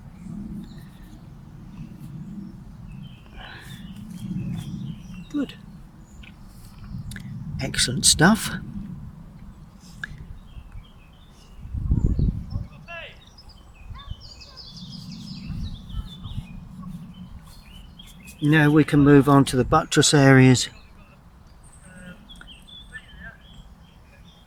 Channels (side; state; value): both; identical; correlation 1.00